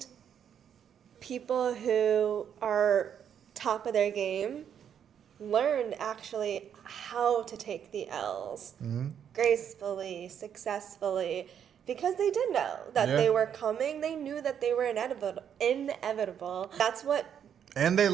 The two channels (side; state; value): left; quieter; 8.6 dB